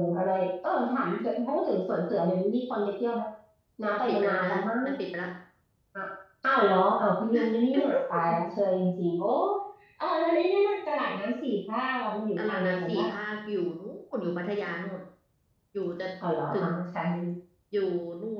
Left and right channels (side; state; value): both; identical; correlation 1.00